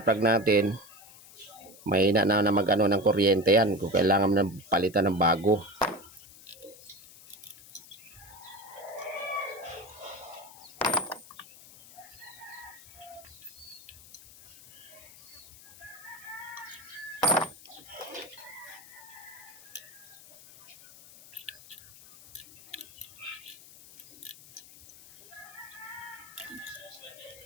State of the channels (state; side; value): noise; left; hiss, 20 dB below the sound